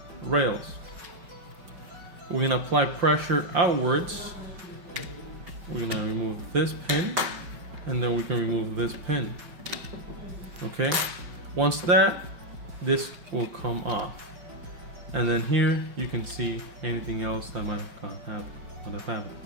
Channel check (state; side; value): late; left; 5.8 ms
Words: rails. We're gonna apply pressure outwards. We're gonna remove this pin, and then we can remove this pin. Okay, once this will come off, and then here you can see anything else that might have happened.